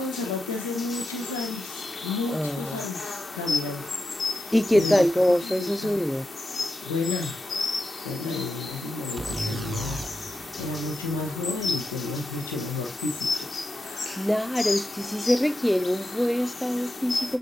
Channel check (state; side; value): normal; both; correlation 0.88